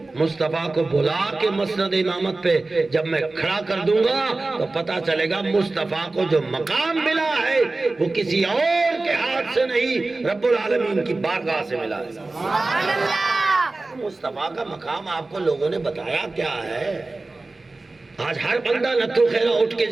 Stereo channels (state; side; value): quieter; left; 3.3 dB